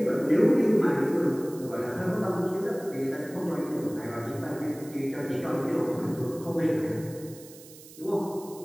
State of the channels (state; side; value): noise; right; hiss, 19 dB below the sound